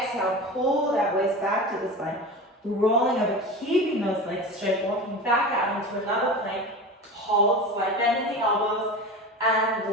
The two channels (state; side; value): normal; both; correlation 0.30